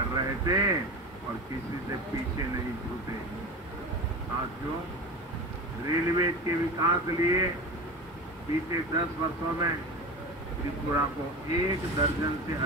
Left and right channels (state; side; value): normal; both; correlation 0.29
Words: रहे थे और किसी से पीछे नहीं छूटे। साथियों, रेलवे के विकास के लिए बीते 10 वर्षों में त्रिपुरा को 1 दर्जन से